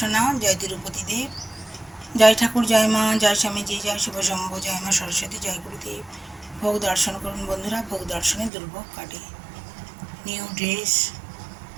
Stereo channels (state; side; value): drops out; left; at 8.5 s